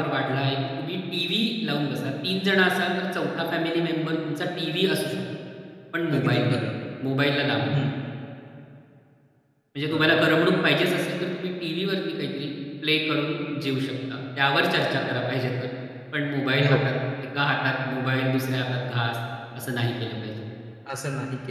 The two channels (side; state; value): both; identical; correlation 1.00